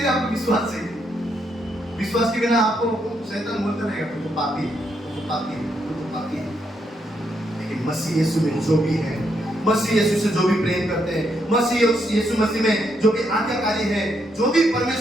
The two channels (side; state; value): both; normal; correlation 0.77